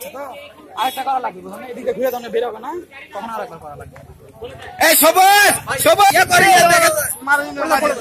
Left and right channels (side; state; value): both; identical; correlation 1.00